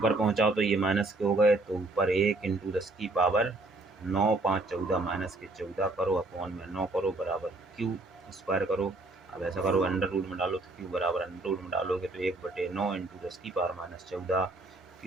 पहुँचाओ तो ये माइनस के हो गए, तो ऊपर 1 इंटू 10⁻9 5 14 माइनस के 14 करो, अपॉन में 9 करो बराबर Q² करो। अब ऐसा करो अंडर रूट में डालो, तो Q बराबर अंडर रूट में डालोगे तो 1/9 इंटू 10⁻14,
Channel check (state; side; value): quieter; left; 3.0 dB